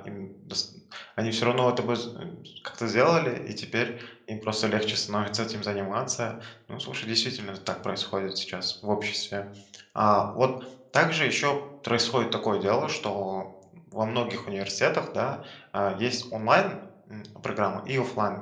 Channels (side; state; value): both; identical; correlation 1.00